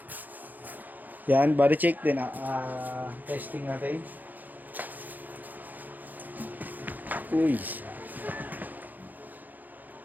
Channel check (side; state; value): left; late; 0.084 ms